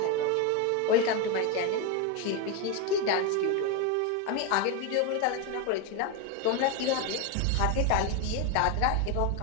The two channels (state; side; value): different; both; correlation 0.03